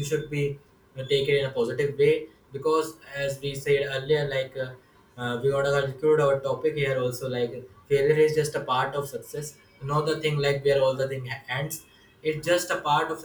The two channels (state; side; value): identical; both; correlation 1.00